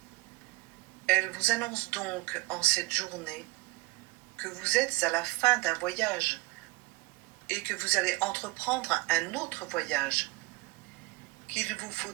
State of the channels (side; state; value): left; quieter; 22.8 dB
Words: Elle vous annonce donc en cette journée que vous êtes à la fin d'un voyage et que vous allez entreprendre un autre voyage, qu'il vous faut